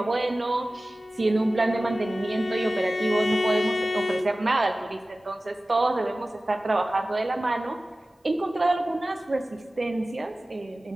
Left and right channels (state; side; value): normal; both; correlation 0.96